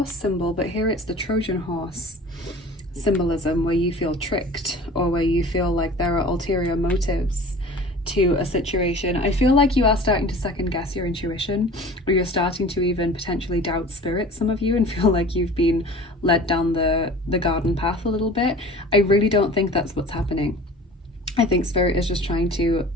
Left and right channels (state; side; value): normal; both; correlation 0.42